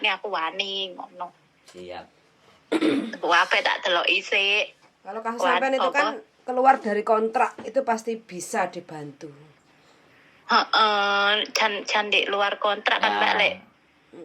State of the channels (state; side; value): identical; both; correlation 1.00